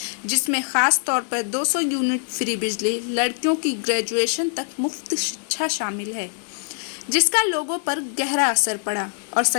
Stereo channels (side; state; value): right; silent; digital silence